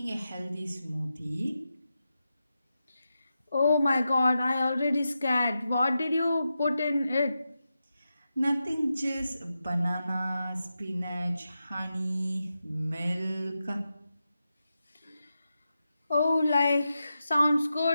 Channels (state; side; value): inverted; both; correlation -0.90